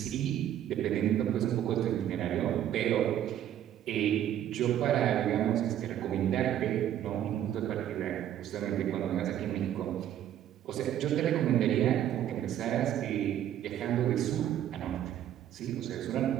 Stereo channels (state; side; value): quieter; left; 11.2 dB